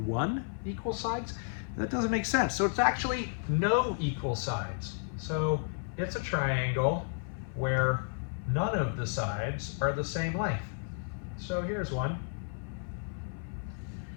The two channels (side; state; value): right; silent; 56 dB below the other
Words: 1 equal sides. That doesn't make sense. So it's actually no equal sides. So it's a triangle where none of the sides are the same length. So here's one.